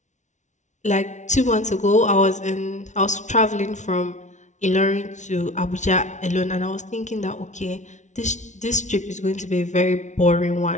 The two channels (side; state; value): right; late; 0.35 ms